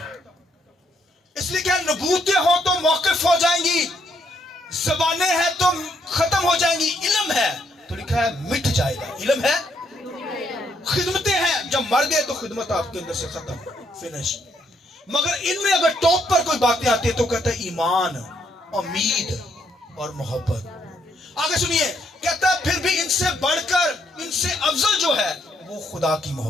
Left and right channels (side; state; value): both; normal; correlation 0.73